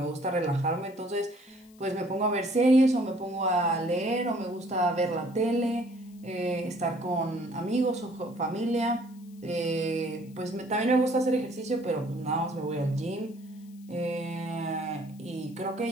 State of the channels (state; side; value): noise; left; hiss, 29 dB below the sound